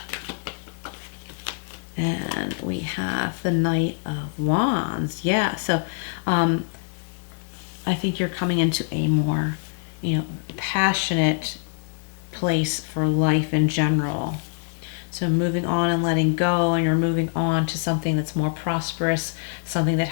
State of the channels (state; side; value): silent; right; digital silence